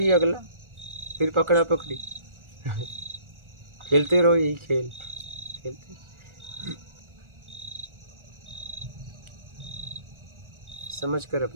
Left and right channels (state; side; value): late; left; 1.4 ms